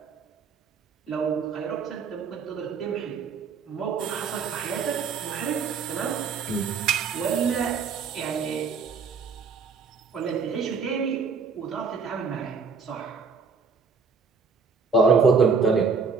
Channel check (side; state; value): left; quieter; 5.2 dB